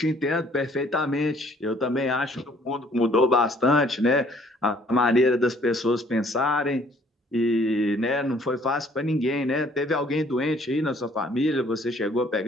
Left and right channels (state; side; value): normal; both; correlation 0.60